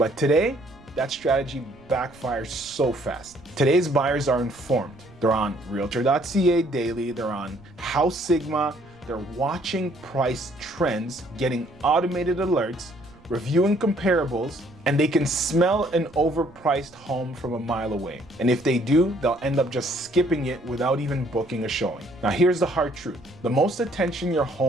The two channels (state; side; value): noise; right; rumble, 25 dB below the sound